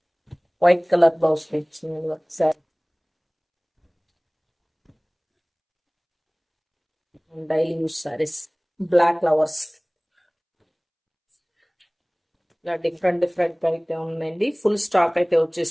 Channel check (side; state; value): both; identical; correlation 1.00